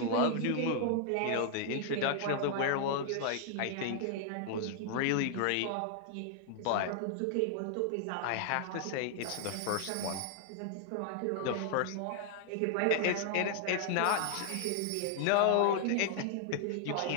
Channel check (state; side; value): different; both; correlation 0.00